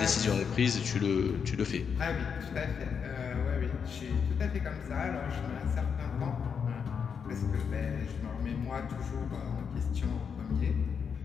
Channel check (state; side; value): quieter; right; 6.6 dB